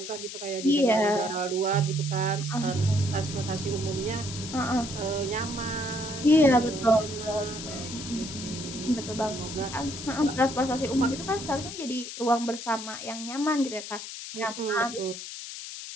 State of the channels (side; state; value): left; noise; hiss, 9 dB below the sound